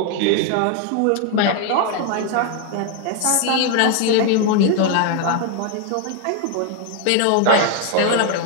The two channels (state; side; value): different; both; correlation 0.01